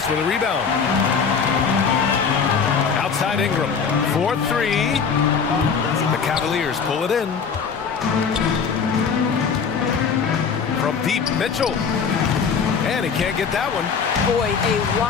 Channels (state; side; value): quieter; right; 6.0 dB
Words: with a rebound. Outside Ingram, 4-3. The Cavaliers pull it in. From deep, Mitchell. And he can't get that one. Boy, a